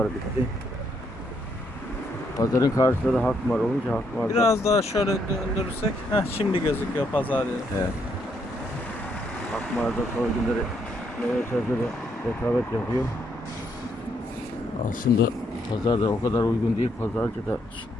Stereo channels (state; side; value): normal; both; correlation 0.74